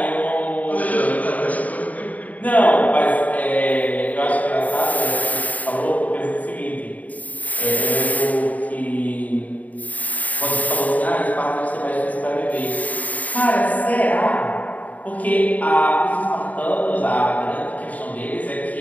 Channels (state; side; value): late; right; 0.073 ms